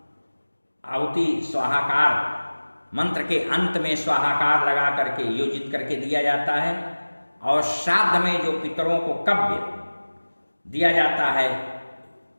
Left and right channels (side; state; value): both; inverted; correlation -1.00